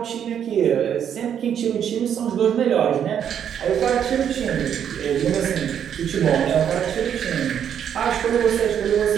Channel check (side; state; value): left; quieter; 8.8 dB